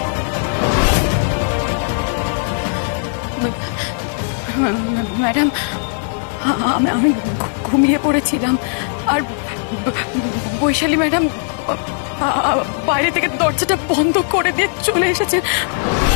ম্যাডাম, আমি ঘুমিয়ে পড়েছিলাম, আর বৈশালী ম্যাডাম বাইরে থেকে দরজাটা বন্ধ করে দিয়ে চলে এসেছে।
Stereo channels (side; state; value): right; silent; 60 dB below the other